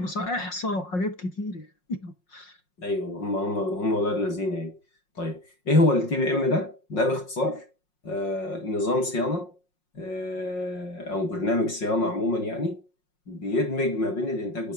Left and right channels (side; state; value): right; late; 5.5 ms